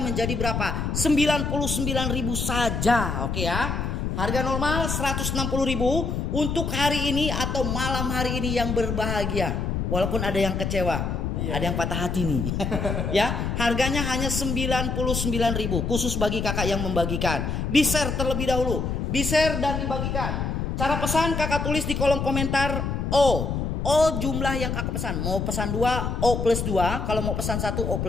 berapa? 99.000 saja. Oke ya. Harga normal 160.000 untuk hari ini atau malam hari ini yang berbahagia. Walaupun ada yang kecewa. Ada yang patah hati nih. Ya, harganya hanya 99.000 khusus bagi kakak yang membagikan. Di-share terlebih dahulu. Di-share dan dibagikan. Cara pesan kakak tulis di kolom komentar O jumlah yang kakak pesan. Mau pesan 2 O plus 2. Kalau mau pesan 1 O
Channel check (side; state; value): left; noise; rumble, 1 dB below the sound